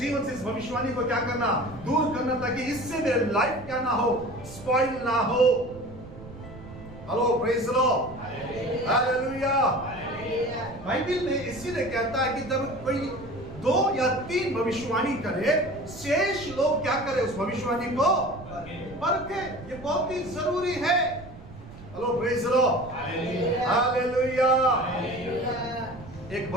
से इस भविष्यवाणी को क्या करना, दूर करना, ताकि इससे मेरे लाइफ क्या ना हो, स्पॉइल ना हो। Hello praise the lord, hallelujah. Bible में इसीलिए कहता है कि जब कोई 2 या 3 भविष्यवाणी करे, शेष लोग क्या करे, उस भविष्यवाणी को परखे। ये बहुत ही जरूरी है। Hello praise the lord, hallelujah. एक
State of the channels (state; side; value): noise; right; rumble, 16 dB below the sound